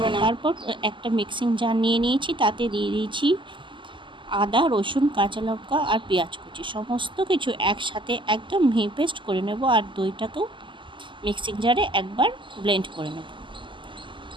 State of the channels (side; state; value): left; late; 0.24 ms